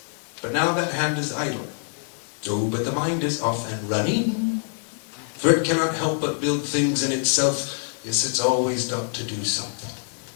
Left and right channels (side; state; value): right; silent; 62 dB below the other